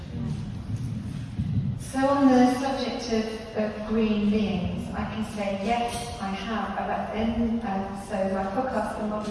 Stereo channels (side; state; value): both; identical; correlation 1.00